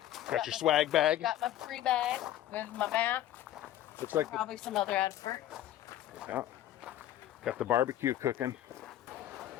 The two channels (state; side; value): quieter; right; 12.9 dB